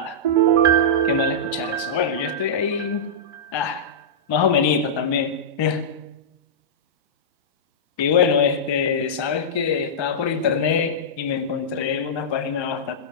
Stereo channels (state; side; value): late; right; 1.3 ms